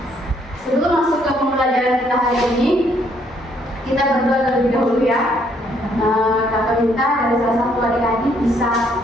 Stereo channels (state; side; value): normal; both; correlation 0.68